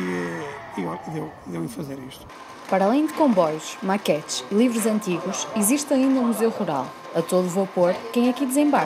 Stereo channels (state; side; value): identical; both; correlation 1.00